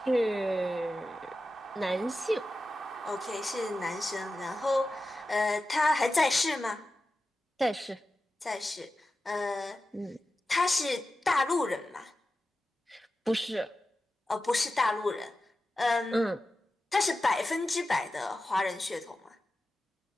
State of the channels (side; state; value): both; normal; correlation 0.93